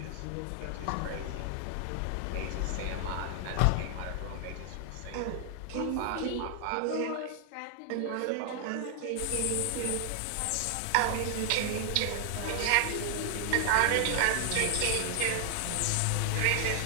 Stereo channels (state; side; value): different; both; correlation 0.00